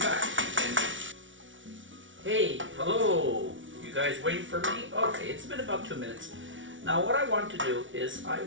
And hey, hello. You guys waiting for me? Okay, it's been about 2 minutes. Now, what I want to do is I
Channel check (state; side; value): late; left; 0.56 ms